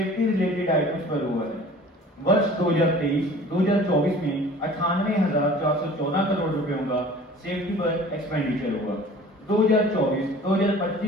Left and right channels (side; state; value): both; normal; correlation 0.46